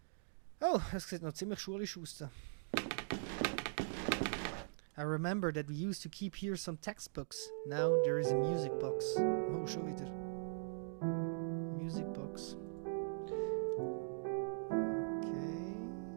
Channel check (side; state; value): left; silent; digital silence